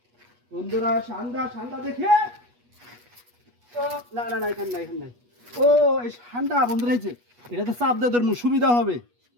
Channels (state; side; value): late; left; 8.3 ms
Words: বন্ধুরা, ঠান্ডা ঠান্ডা দেখে তো না না না, এখানে নাই, এখানে নাই। ও এই ঠান্ডা বন্ধুরা, এই যে এটাতে চাপ দিয়ে ধরবো, সুবিধা হবে।